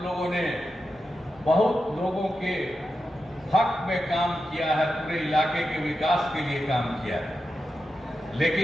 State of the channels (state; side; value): noise; right; rumble, 29 dB below the sound